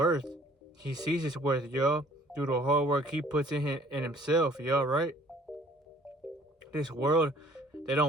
He sees his worth, y'all, through the hard work he puts in himself, y'all, right? This world, they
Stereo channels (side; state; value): both; normal; correlation 0.56